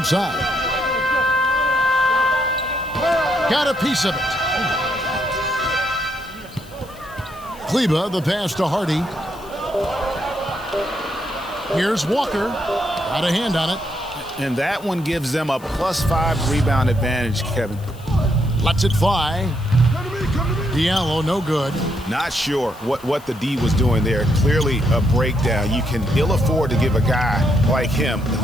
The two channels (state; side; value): noise; left; hiss, 23 dB below the sound